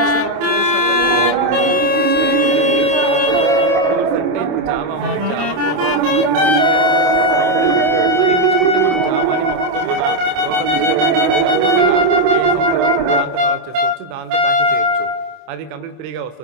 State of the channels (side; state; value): left; late; 27 ms